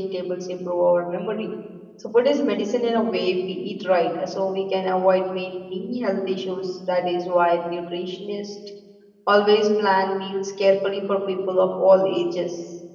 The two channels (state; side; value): identical; both; correlation 1.00